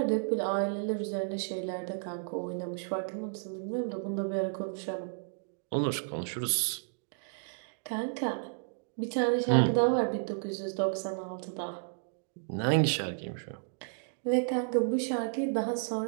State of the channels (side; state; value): left; silent; digital silence